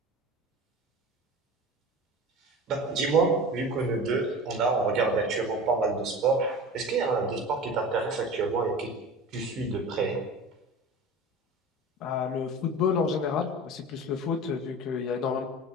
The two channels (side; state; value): both; normal; correlation 0.35